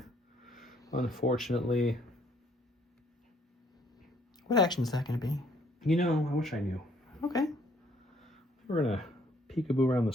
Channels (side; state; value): both; normal; correlation 0.65